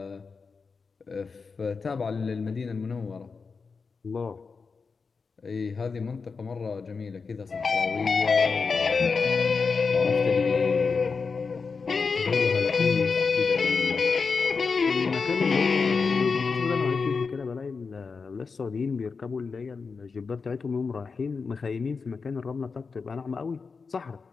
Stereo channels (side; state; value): right; quieter; 4.9 dB